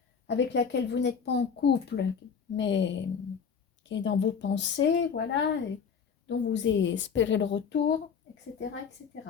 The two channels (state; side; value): quieter; right; 6.5 dB